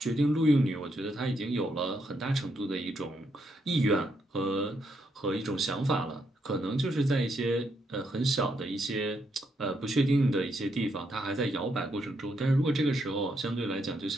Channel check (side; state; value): both; normal; correlation 0.77